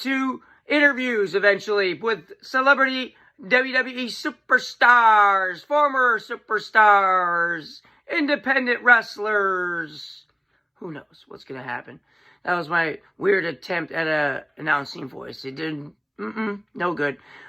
interviews eventually with celebrity WWE superstars, former superstars, independent wrestlers. Who knows what's going to happen? That was my weird attempt at a announcing voice. It didn't, no good.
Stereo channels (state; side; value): identical; both; correlation 1.00